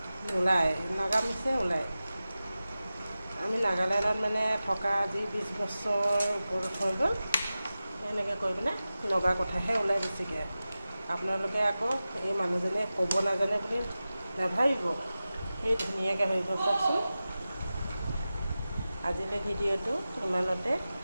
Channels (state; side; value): inverted; both; correlation -0.95